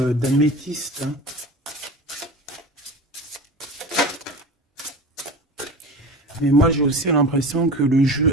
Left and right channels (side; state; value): both; normal; correlation 0.33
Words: d'améthyste. Hein. Mais moi j'ai aussi l'impression que le